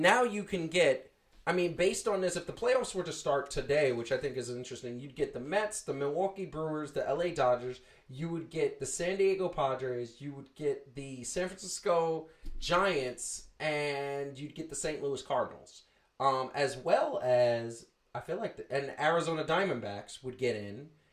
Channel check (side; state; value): both; identical; correlation 1.00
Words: you can get, I mean, based on this, if the playoffs were to start today, which I think is interesting, you'd get the Mets, the Milwaukee Brewers, the LA Dodgers, you would get the San Diego Padres, you would get the San Francisco Giants, and you'd get the St. Louis Cardinals. As well as, I feel like, and Arizona Diamondbacks would get in,